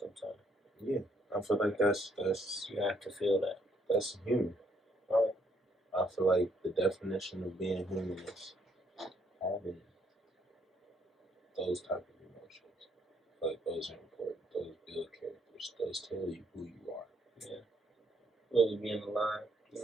Yeah, I feel like that's You have to feel that. that's human. Right. I feel like the definition of being human is having those type of emotions. I feel like those are important. Those build characters. Those tell you who you are. Yeah. Really being alive. You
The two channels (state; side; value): normal; both; correlation 0.70